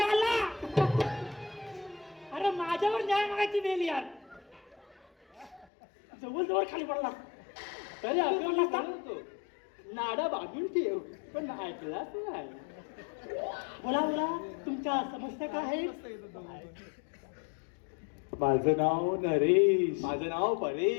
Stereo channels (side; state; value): right; drops out; at 5.7 s